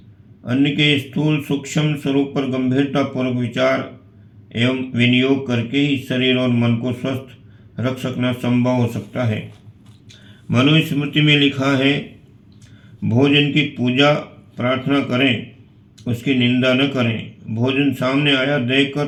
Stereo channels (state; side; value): identical; both; correlation 1.00